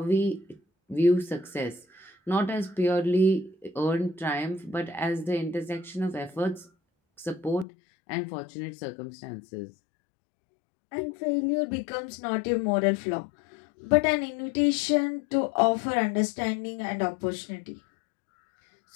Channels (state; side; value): drops out; right; at 7.7 s